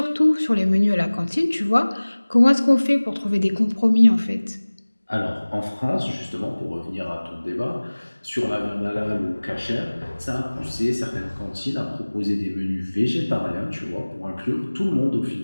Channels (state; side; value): inverted; both; correlation -1.00